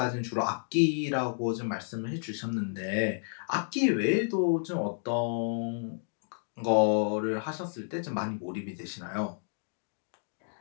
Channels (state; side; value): silent; right; digital silence